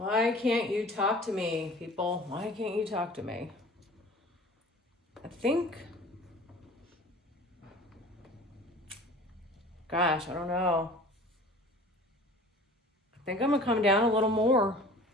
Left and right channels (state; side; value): normal; both; correlation 0.44